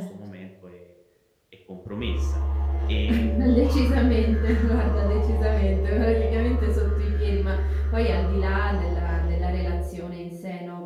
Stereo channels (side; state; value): both; identical; correlation 1.00